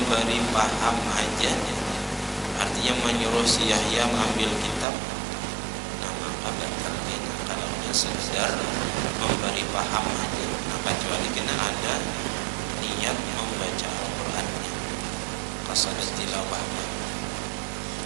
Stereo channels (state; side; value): drops out; left; at 4.9 s